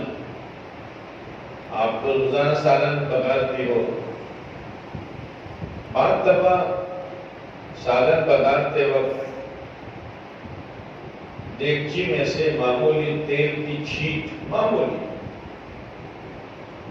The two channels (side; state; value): both; identical; correlation 1.00